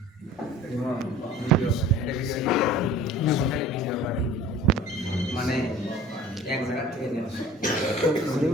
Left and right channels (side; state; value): both; normal; correlation 0.45